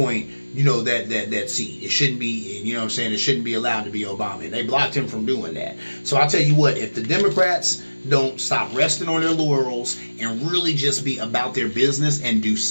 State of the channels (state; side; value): inverted; both; correlation -1.00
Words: that seat. It shouldn't be, it shouldn't be allowed to be Obama. And they blocked him from doing that. So I'll tell you what, if the Democrats don't stop resting on their laurels and really just be about their business and do